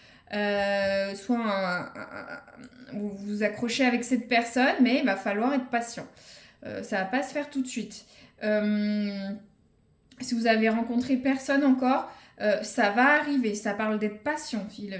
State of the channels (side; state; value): both; identical; correlation 1.00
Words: Soit vous vous accrochez avec cette personne, mais il va falloir être patient. Ça va pas se faire tout de suite. Si vous avez rencontré personne encore, ça va arriver. Ça parle d'être patient.